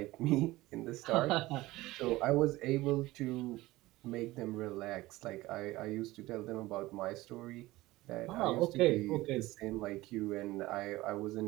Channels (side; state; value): left; quieter; 18.6 dB